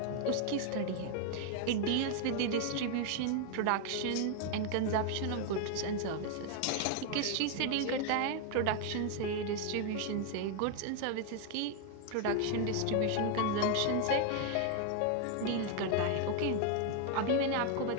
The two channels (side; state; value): both; different; correlation 0.00